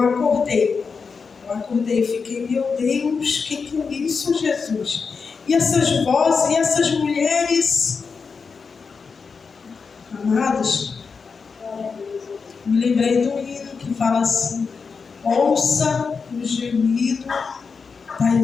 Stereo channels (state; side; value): quieter; right; 5.2 dB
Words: e fiquei, meu Deus, que é isso, Jesus? E essas vozes, e essas mulheres, amados, me lembrei do hino que fala assim, ouça o gemido